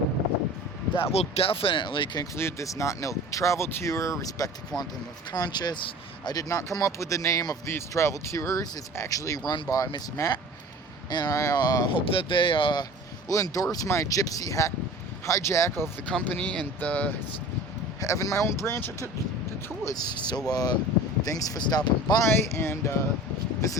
that will definitely conclude this Notnilc travel tour. Respect to Quantum of Conscious. I did not come up with the name of these travel tours. It's actually run by Miss Matt, and I hope that they will endorse my gypsy hijack of the company and having my own branch of the tours. So thanks for stopping by, and this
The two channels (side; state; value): both; normal; correlation 0.41